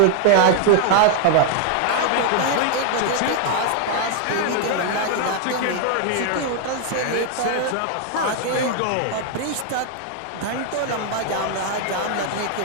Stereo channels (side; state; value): both; different; correlation 0.00